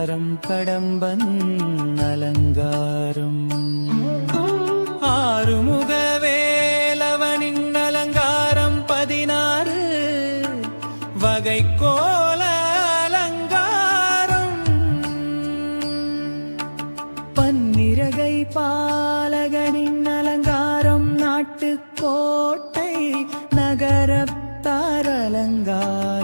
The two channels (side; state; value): both; inverted; correlation -1.00